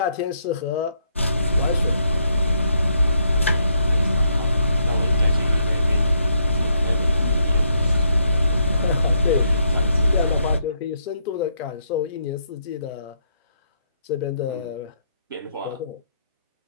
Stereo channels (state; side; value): inverted; both; correlation -0.75